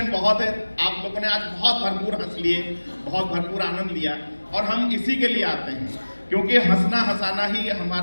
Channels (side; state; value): both; inverted; correlation -1.00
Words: बहुत है। आप लोगों ने आज बहुत भरपूर हंस लिए, बहुत भरपूर आनंद लिया और हम इसी के लिए आते हैं, क्योंकि हंसना हंसाना ही